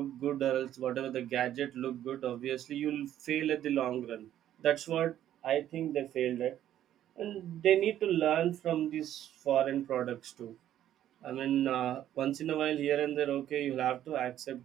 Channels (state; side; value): quieter; left; 11.7 dB